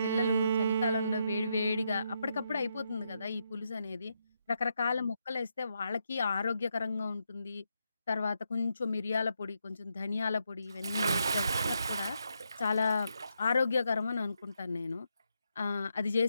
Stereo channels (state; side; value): inverted; both; correlation -0.81